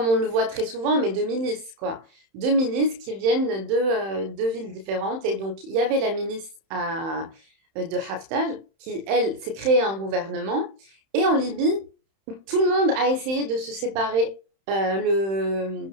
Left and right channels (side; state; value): left; late; 31 ms